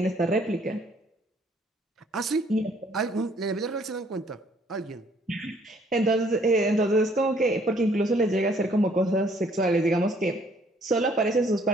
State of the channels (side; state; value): both; normal; correlation 0.63